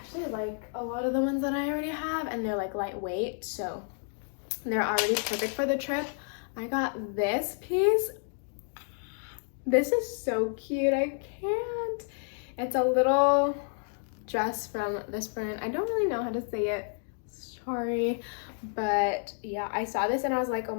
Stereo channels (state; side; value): silent; right; 58 dB below the other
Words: like a lot of the ones that I already have, and they're like lightweight, so they're already perfect for the trip. I got this piece. This is so cute. I can't. It's a little dress from this brand. I don't really know how to say it. Sorry. But yeah, I saw this and I was like, oh